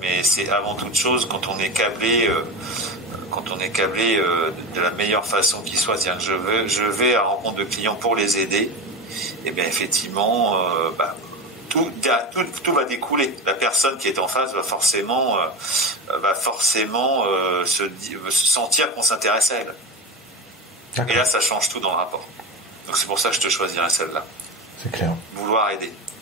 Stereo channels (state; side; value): normal; both; correlation 0.24